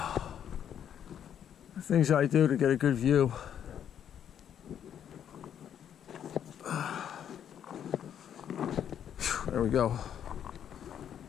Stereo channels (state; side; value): quieter; right; 9.3 dB